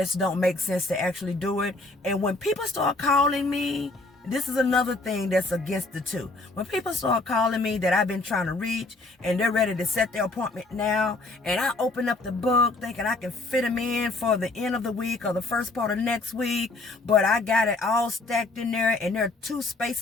don't make sense to actually do it. And when people start calling me, this is another thing that's against the two. When people start calling me that I've been trying to reach and they're ready to set their appointment now, and I open up the book thinking I can fit them in for the end of the week or the first part of next week, but I got it all stacked in there, and there are 2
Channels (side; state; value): right; quieter; 3.2 dB